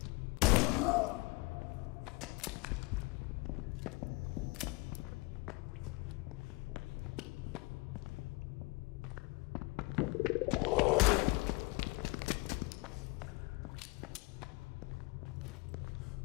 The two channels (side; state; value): right; quieter; 24.8 dB